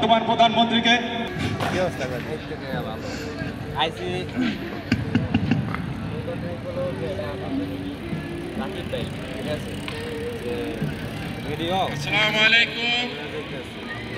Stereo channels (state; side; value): identical; both; correlation 1.00